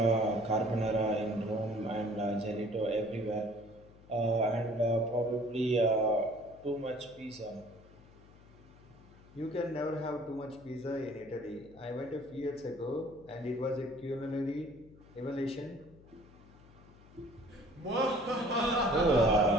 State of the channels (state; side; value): noise; left; hum, 23 dB below the sound